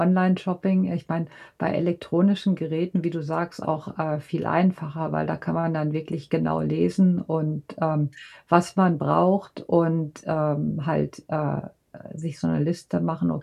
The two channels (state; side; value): identical; both; correlation 1.00